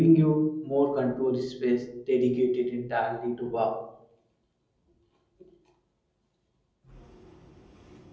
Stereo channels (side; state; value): both; identical; correlation 1.00